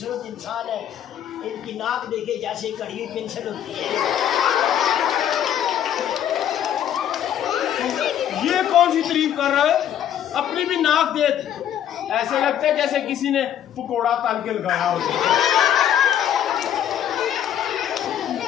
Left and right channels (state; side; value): quieter; right; 10.2 dB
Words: इंसान है। इनकी नाक देखे जैसे कड़ी हुई पेंसिल होती है। ये कौन सी तारीफ कर रहा है? अपनी भी नाक देख। ऐसे लगता है जैसे किसी ने पकोड़ा तल के लगाया हो।